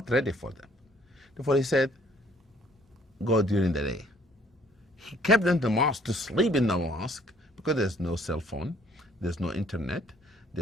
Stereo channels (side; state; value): both; normal; correlation 0.61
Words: ready for them. Therefore he said, go during the day. He kept them in the mosque to sleep in the mosque because there's no cell phone, there's no internet,